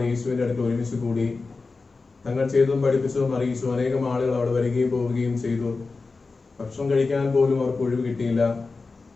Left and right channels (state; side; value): quieter; right; 4.0 dB